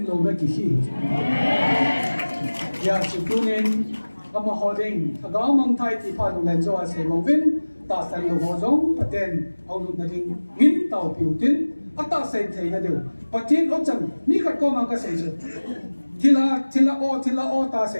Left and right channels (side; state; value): both; inverted; correlation -1.00